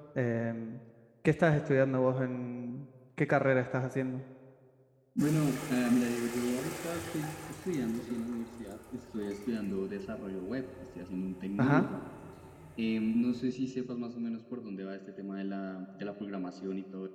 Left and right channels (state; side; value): identical; both; correlation 1.00